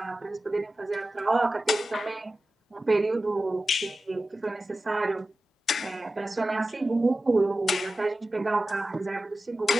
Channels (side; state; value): both; normal; correlation 0.94